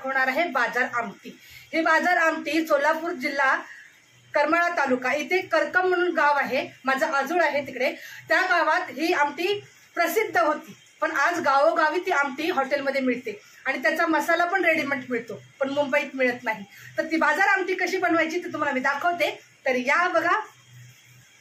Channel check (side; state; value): both; identical; correlation 1.00